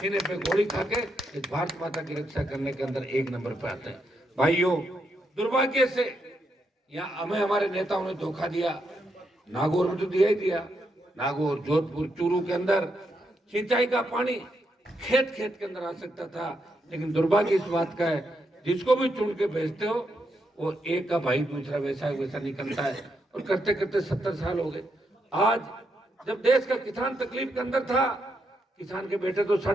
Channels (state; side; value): normal; both; correlation 0.80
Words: पे गोली खा के इस भारत माता की रक्षा करने के अंदर 1 नंबर पे आते हैं। भाइयों, दुर्भाग्य से यहाँ हमें हमारे नेताओं ने धोखा दिया। नागौर में तो दिया ही दिया। नागौर, जोधपुर, चूरू के अंदर सिंचाई का पानी खेत खेत के अंदर आ सकता था, लेकिन दुर्भाग्य इस बात का है जिसको भी चुन के भेजते हो वो एक का भाई दूसरा वैसा निकलता है। और करते करते 70 साल हो गए। आज जब देश का किसान तकलीफ के अंदर था, किसान के बेटे तो